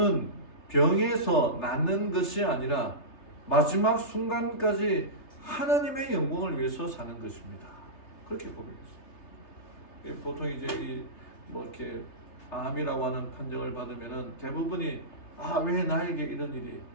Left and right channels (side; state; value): right; late; 3.3 ms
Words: 병에서 낫는 것이 아니라 마지막 순간까지 하나님의 영광을 위해서 사는 것입니다. 그렇게 고백했어요. 보통 이제 이렇게 암이라고 하는 판정을 받으면은 대부분이 왜 나에게 이런 일이,